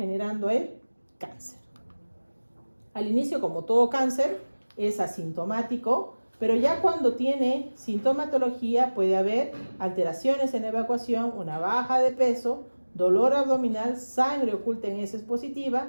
el cáncer. Al inicio, como todo cáncer, es asintomático, pero ya cuando tiene sintomatología puede haber alteraciones en la evacuación, una baja de peso, dolor abdominal, sangre oculta en heces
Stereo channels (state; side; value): inverted; both; correlation -1.00